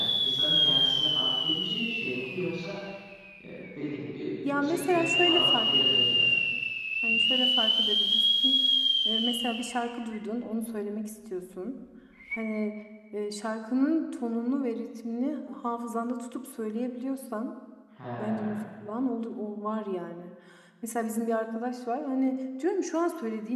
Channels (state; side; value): identical; both; correlation 1.00